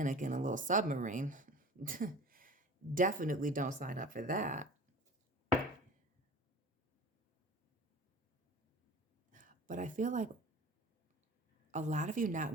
in a little submarine. Definitely don't sign up for that. But I feel like a lot of you not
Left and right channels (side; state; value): both; normal; correlation 0.40